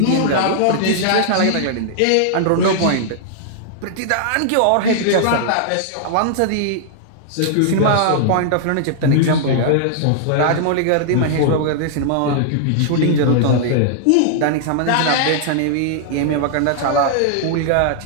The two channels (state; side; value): different; both; correlation -0.01